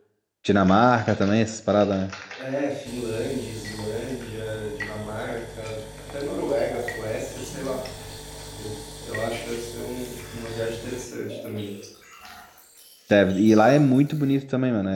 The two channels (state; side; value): identical; both; correlation 1.00